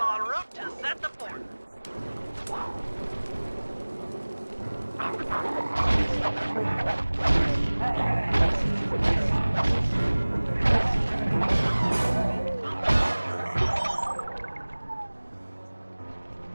route to set the fort.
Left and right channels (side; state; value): both; inverted; correlation -1.00